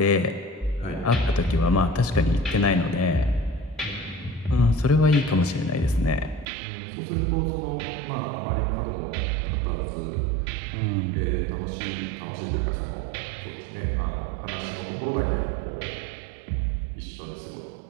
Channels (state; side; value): drops out; left; at 6.5 s